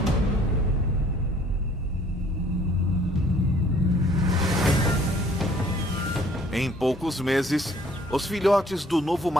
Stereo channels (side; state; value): both; normal; correlation 0.58